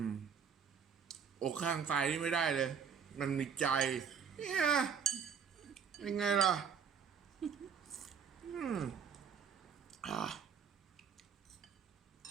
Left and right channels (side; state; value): left; quieter; 6.8 dB